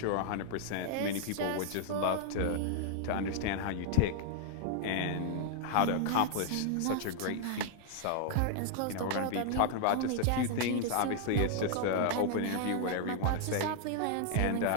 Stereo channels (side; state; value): both; different; correlation 0.00